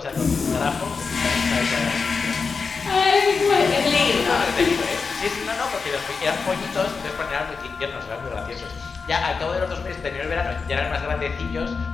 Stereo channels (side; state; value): right; quieter; 4.9 dB